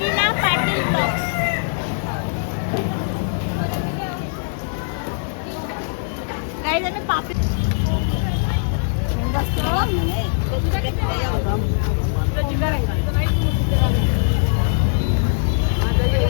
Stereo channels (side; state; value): right; silent; 64 dB below the other